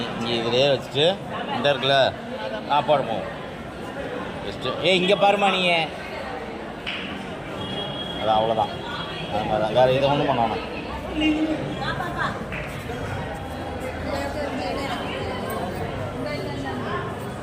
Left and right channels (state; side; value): identical; both; correlation 1.00